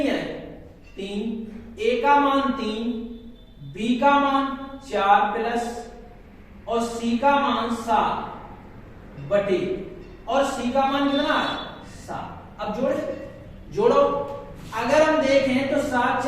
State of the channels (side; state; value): both; identical; correlation 1.00